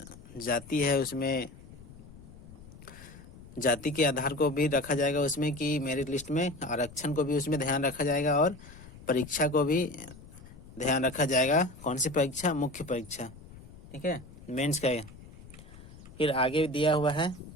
जाति है उसमें जाति के आधार को भी रखा जाएगा उसमें, कि मेरिट लिस्ट में आरक्षण को भी उसमें ध्यान रखा जाएगा, और परीक्षा को भी ध्यान रखा जाएगा। कौन सी परीक्षा? मुख्य परीक्षा, ठीक है, मेंस का। फिर आगे दिया हुआ है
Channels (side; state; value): left; noise; rumble, 18 dB below the sound